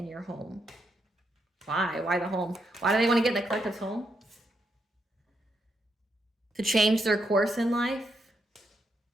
your home. Why? Why the home? Why do they want to get in the collective's home? To change their course in life?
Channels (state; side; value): normal; both; correlation 0.80